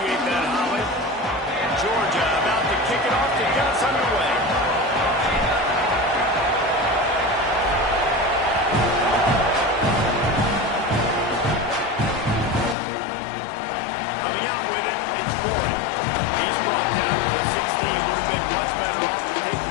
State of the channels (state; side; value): drops out; right; at 12.8 s